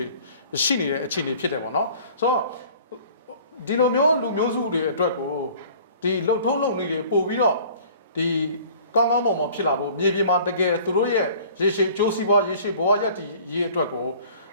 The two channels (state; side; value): inverted; both; correlation -0.50